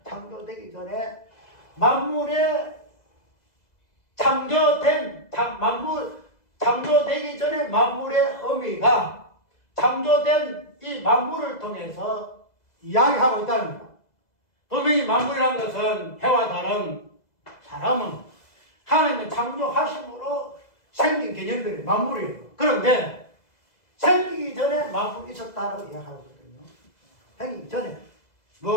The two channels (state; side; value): late; right; 2.0 ms